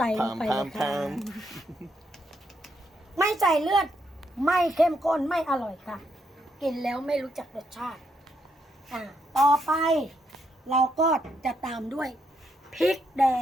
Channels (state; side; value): normal; both; correlation 0.77